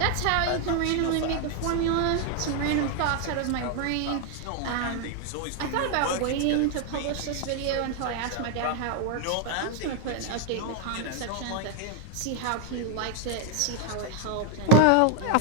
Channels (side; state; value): both; different; correlation 0.00